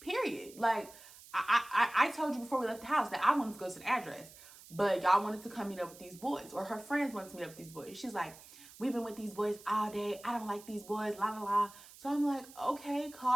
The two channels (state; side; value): noise; right; hiss, 20 dB below the sound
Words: Like, I told you before we left the house that I wanted to go to the address, but y'all wanted to come meet up with these boys, or her friends wanted to meet up with these boys. She's like, we've been with these boys all day. I don't like these boys, la, la, la. So I'm like, okay,